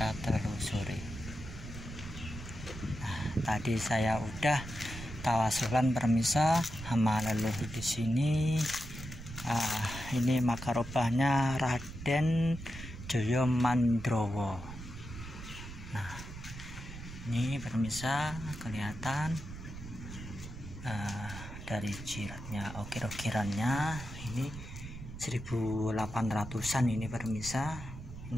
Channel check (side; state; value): right; noise; rumble, 11 dB below the sound